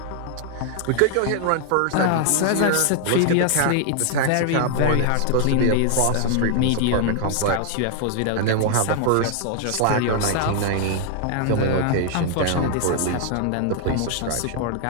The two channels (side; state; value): both; different; correlation 0.00